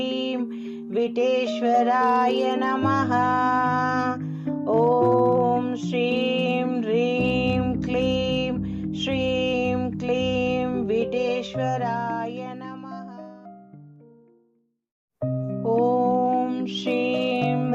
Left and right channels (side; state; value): both; identical; correlation 1.00